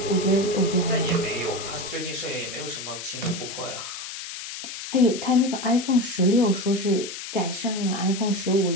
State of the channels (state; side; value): noise; left; hiss, 9 dB below the sound